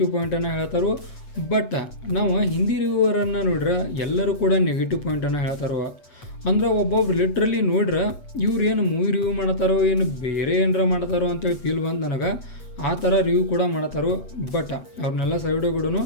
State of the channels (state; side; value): late; right; 8.1 ms